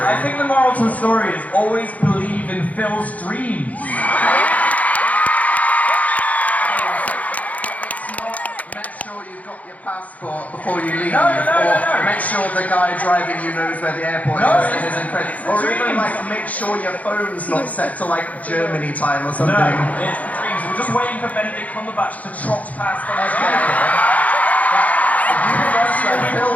I think the moral to the story is always believe in Phil's dreams. It's not make sure you've got your passport before you leave, No. or make sure the guy driving you knows where the airport No, is and it's isn't credit, the or even dreams. like make sure your phone's not set to like Germany time or No, something. it's the dreams. We're just waiting for Benedict Cumberbatch to trot past on his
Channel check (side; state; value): right; late; 0.072 ms